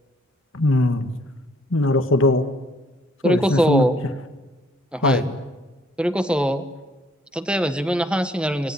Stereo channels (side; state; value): both; normal; correlation 0.64